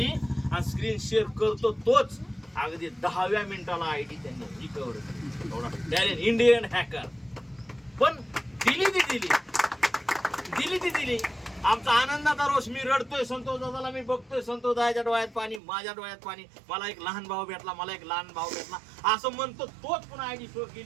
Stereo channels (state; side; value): drops out; left; at 15.6 s